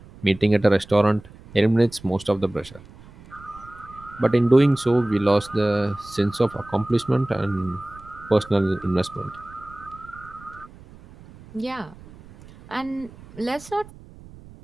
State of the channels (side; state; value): right; noise; rumble, 21 dB below the sound